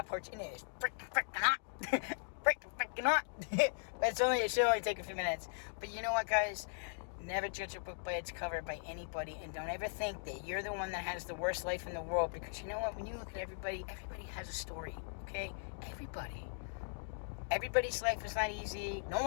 porch, and it is freaking hot. freaking hot. But it should only take a few minutes. But you know what, guys? Never judge a book by its cover by anybody, and don't ever think that you're the one that has the worst life in the world, because you know what? When you look at everybody has a story, okay? Everybody's life is not easy. No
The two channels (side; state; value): right; silent; digital silence